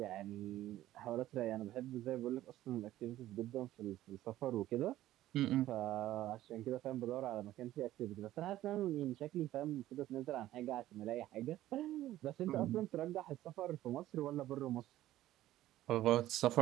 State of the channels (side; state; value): left; quieter; 14.3 dB